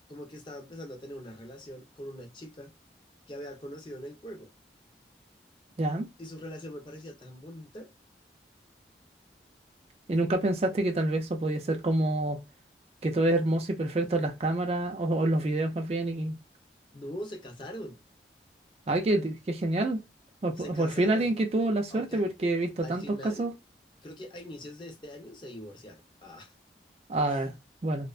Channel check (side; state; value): both; normal; correlation 0.62